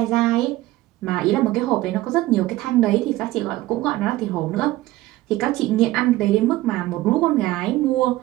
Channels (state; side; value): quieter; left; 16.9 dB